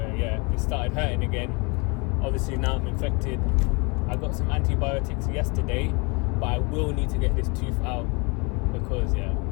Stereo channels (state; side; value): quieter; right; 30.0 dB